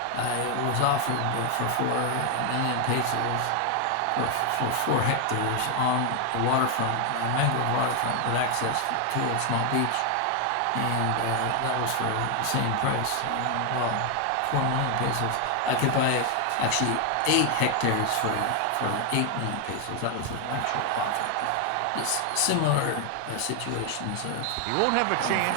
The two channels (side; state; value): both; different; correlation 0.00